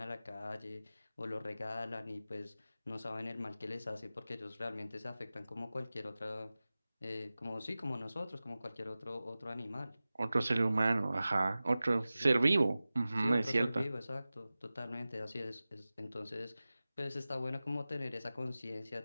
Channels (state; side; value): inverted; both; correlation -0.96